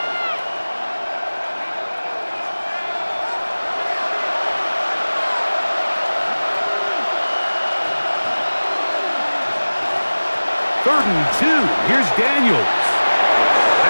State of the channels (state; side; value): inverted; both; correlation -1.00